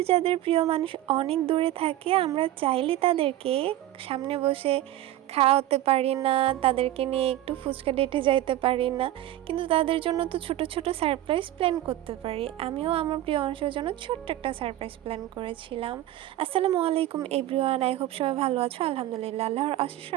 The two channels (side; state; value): left; quieter; 14.2 dB